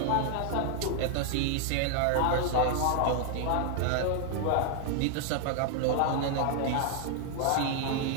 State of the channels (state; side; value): different; both; correlation 0.00